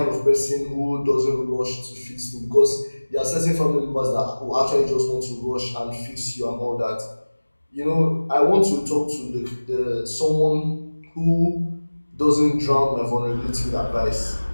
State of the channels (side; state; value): both; inverted; correlation -1.00